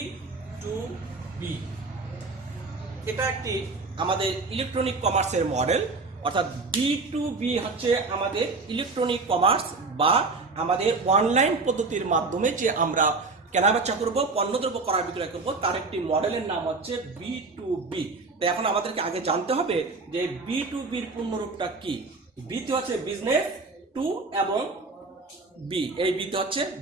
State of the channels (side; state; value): left; quieter; 3.8 dB